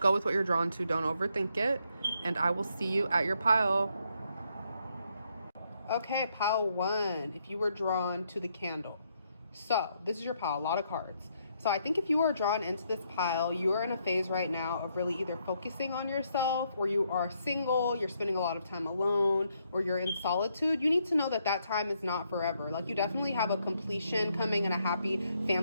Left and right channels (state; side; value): inverted; both; correlation -0.75